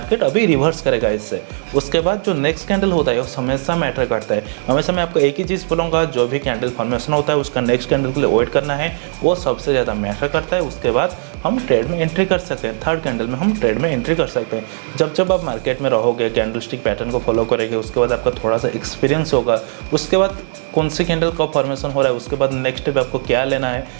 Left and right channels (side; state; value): left; silent; 63 dB below the other